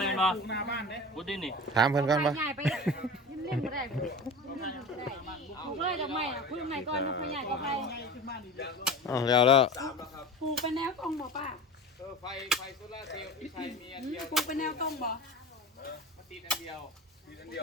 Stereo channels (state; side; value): normal; both; correlation 0.32